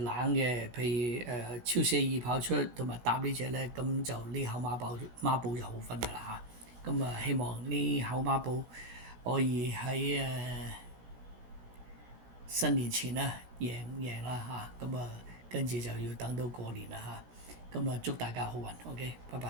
嘅，譬如超寫意跑出同埋搭呢隻咧，咁就呢口孖寶就好分㗎啦嚇。咁希望呢口孖寶可以喺新年前啦贏啦嚇。跟住就要等到過年啦嚇。祝大家好運，OK，拜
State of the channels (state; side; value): late; left; 16 ms